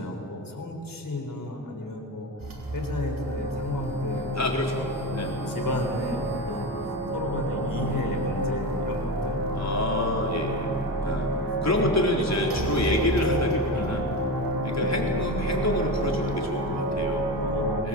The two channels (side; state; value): both; normal; correlation 0.22